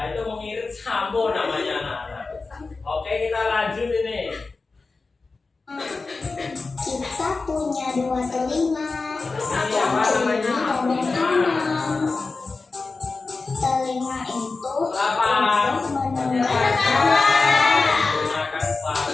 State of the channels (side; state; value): right; quieter; 3.9 dB